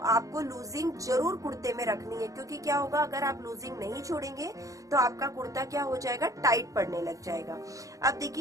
लूजिंग जरूर कुर्ते में रखनी है, क्योंकि क्या होगा, अगर आप लूजिंग नहीं छोड़ेंगे तो आपका कुर्ता क्या हो जाएगा, टाइट पड़ने लग जाएगा। अब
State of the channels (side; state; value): left; late; 0.16 ms